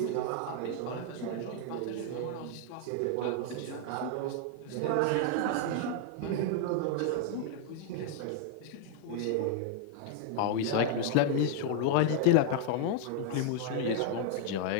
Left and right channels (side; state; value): both; different; correlation 0.00